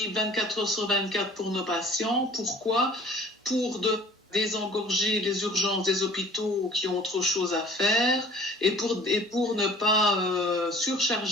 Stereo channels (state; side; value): normal; both; correlation 0.50